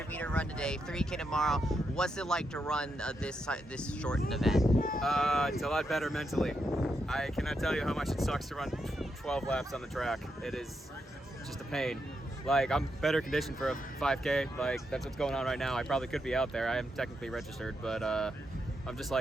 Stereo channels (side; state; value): both; normal; correlation 0.83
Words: run today, 3K tomorrow. What's it like to run this shortened event? It's a lot better mentally. I cannot tell you how much it sucks to run 12 laps on the track. It is just a pain. Like, I'm better conditioned for a 5K. Like, that's what's going on right now. I probably could be out there. I am technically registered, but I'm just